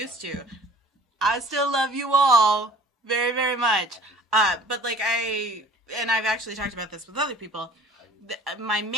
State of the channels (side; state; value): both; normal; correlation 0.48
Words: to. I still love you all very, very much. But like I've actually talked about this with other people. My